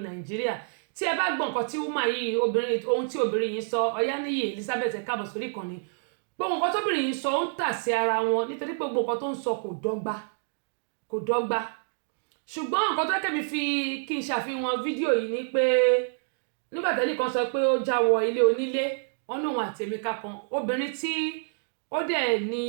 Nàìjíríà tí ẹ bá gbọ́ nǹkan tí woman yìí ohun tí obìnrin yìí sọ Ọ̀yáníyì Elizabeth ẹ káàbọ̀ sórí ìkànnì gbogbo nǹkan tóbìnrin yìí sọ ó ń tà sí ara wọn nítorí pé gbogbo nǹkan tó ń sọ kò dọ́gba ṣùgbọ́n nǹkan tó kẹ́mi fi kí n ṣàfihàn fídíò yìí ni pé nígbà tẹ́lẹ̀ kan sọ pé ó já wọ ilé onílé wọn ní òun àti Emeka kan obìnrin tí ó dẹ̀ ní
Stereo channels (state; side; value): silent; left; digital silence